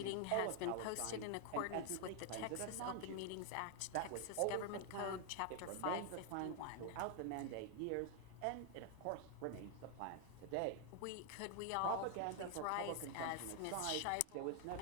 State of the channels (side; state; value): both; different; correlation 0.00